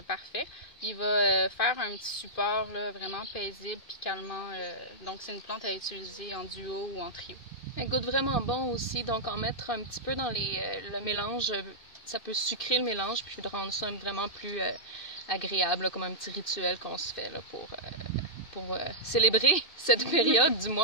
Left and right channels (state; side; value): late; right; 2.6 ms